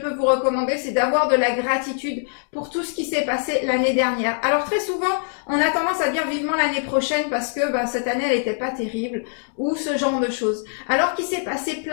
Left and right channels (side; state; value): right; silent; 64 dB below the other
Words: vous recommander, c'est d'avoir de la gratitude pour tout ce qui s'est passé l'année dernière. Alors très souvent, on a tendance à dire vivement l'année prochaine parce que cette année, elle n'était pas terrible ou ce genre de choses. Alors qu'il s'est passé